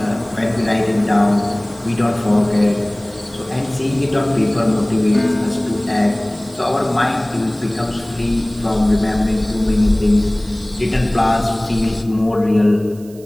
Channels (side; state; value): right; noise; hiss, 25 dB below the sound